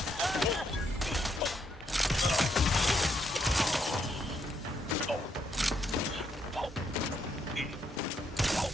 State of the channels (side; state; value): both; normal; correlation 0.75